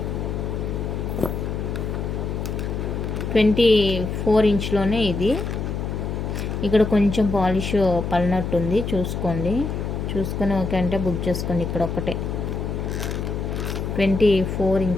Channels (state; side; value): noise; left; hum, 3 dB below the sound